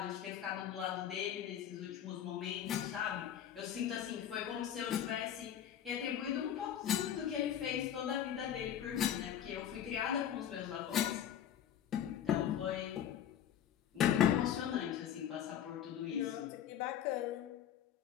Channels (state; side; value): quieter; right; 9.9 dB